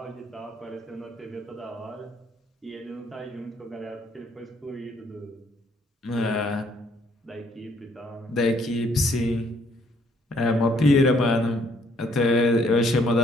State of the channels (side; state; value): both; normal; correlation 0.66